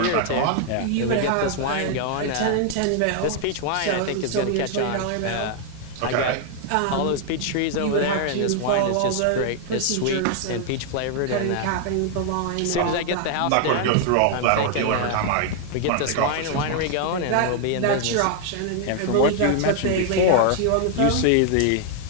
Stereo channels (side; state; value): both; different; correlation 0.00